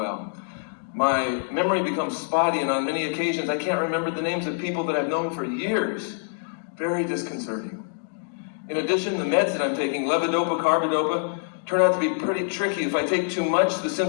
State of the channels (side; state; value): right; silent; digital silence